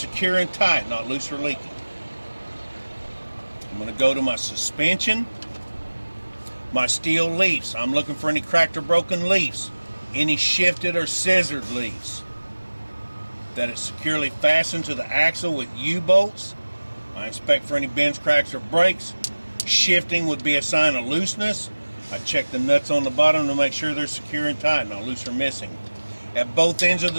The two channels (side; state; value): both; inverted; correlation -1.00